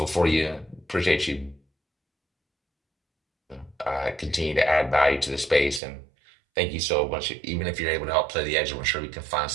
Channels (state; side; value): drops out; left; at 5.8 s